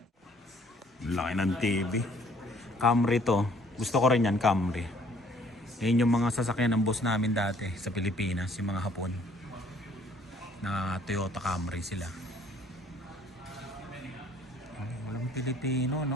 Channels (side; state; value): both; normal; correlation 0.60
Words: Laki ng TV. Camry to. Gusto ko rin yan, Camry. Yan yung mga sasakyan ng boss namin dati sa Pilipinas, yung mga Hapon. Na Toyota Camry sila. Walang Pilipino,